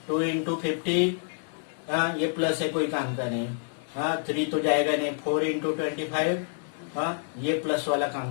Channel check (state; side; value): silent; right; digital silence